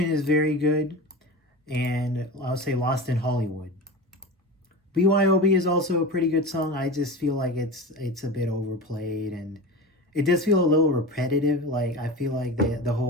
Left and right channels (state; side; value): normal; both; correlation 0.29